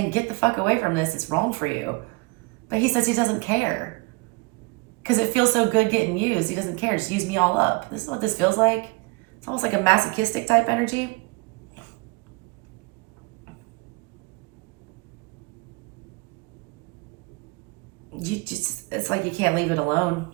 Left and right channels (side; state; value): left; quieter; 27.5 dB